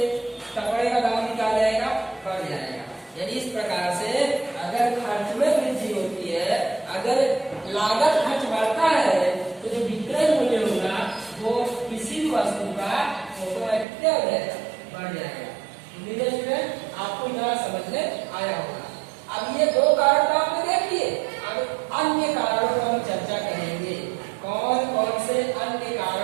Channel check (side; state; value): left; drops out; at 13.9 s